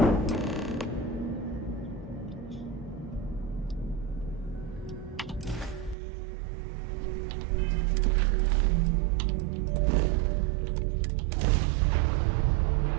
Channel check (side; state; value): left; drops out; at 6.0 s